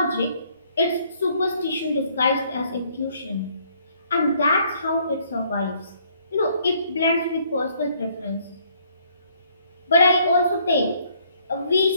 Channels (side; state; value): both; inverted; correlation -0.65